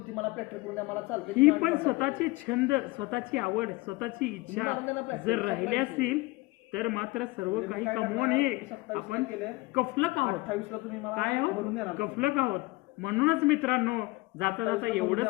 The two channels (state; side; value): quieter; right; 22.1 dB